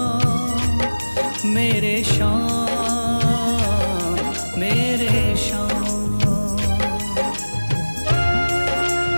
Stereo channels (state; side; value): inverted; both; correlation -1.00